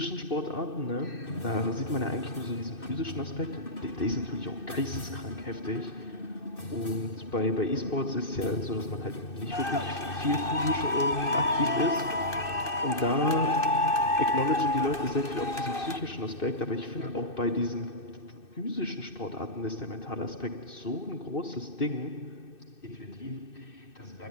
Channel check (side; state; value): right; late; 2.6 ms